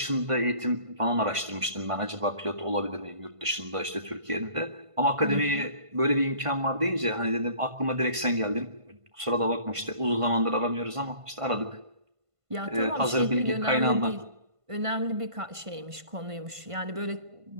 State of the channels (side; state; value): left; late; 1.5 ms